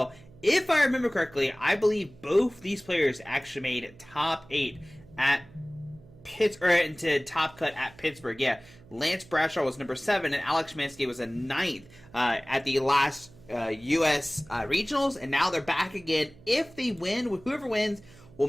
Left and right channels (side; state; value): right; noise; hum, 23 dB below the sound